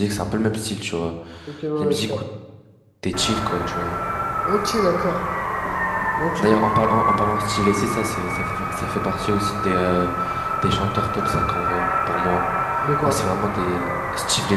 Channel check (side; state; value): both; identical; correlation 1.00